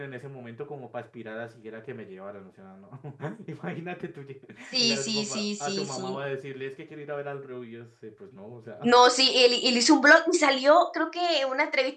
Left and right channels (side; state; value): both; identical; correlation 1.00